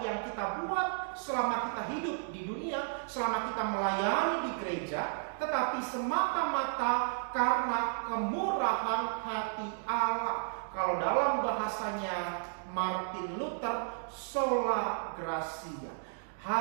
yang kita buat selama kita hidup di dunia, selama kita melayani di gereja, tetapi semata-mata karena kemurahan hati Allah. Kalau dalam bahasanya Martin Luther, sola gratia,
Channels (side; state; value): left; silent; digital silence